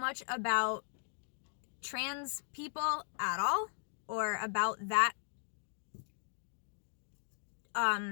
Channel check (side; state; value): right; silent; digital silence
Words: about trans people at all, or about that